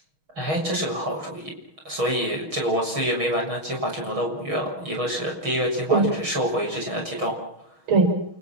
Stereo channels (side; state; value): left; late; 6.3 ms